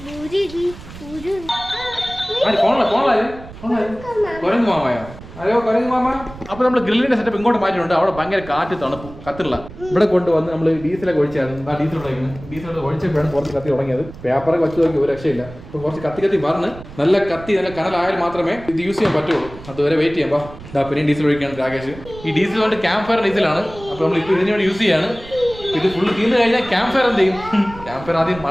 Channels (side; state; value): right; noise; rumble, 16 dB below the sound